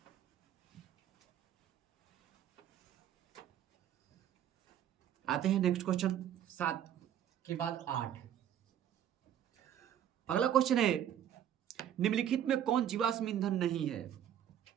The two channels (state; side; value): quieter; left; 10.3 dB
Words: आते हैं नेक्स्ट क्वेश्चन, 7 के बाद 8। अगला क्वेश्चन है, निम्नलिखित में कौन जीवाश्म ईंधन नहीं है?